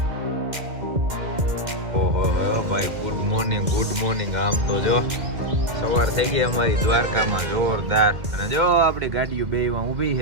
ઓહો ભાઈ ગુડ મોર્નિંગ ગુડ મોર્નિંગ. આમ તો જો સવાર થઈ ગઈ અમારી દ્વારકામાં જોરદાર. અને જો આપણી ગાડીઓ બેમાં ઊભી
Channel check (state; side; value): late; left; 2.1 ms